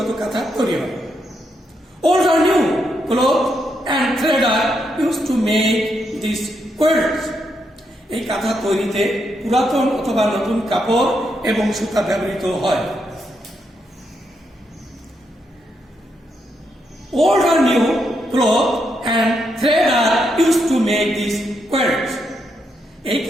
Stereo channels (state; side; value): normal; both; correlation 0.80